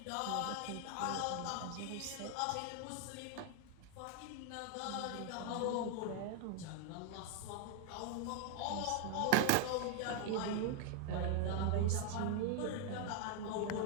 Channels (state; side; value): different; both; correlation 0.00